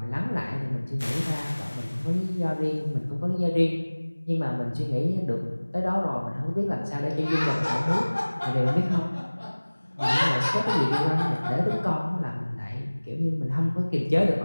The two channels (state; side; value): inverted; both; correlation -1.00